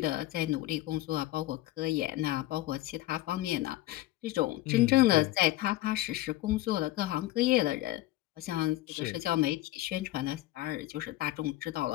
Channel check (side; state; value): right; quieter; 16.0 dB